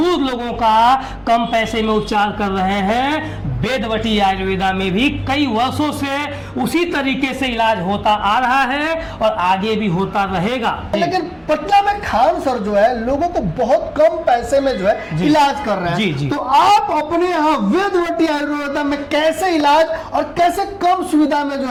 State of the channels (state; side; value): identical; both; correlation 1.00